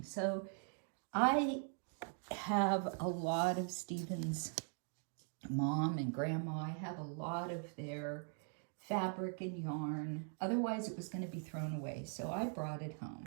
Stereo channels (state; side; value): silent; left; 50 dB below the other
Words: So I have a lot of Stephen's mom and grandma. I have a lot of their fabric and yarn. Otherwise, it was going to be thrown away. So I brought it home.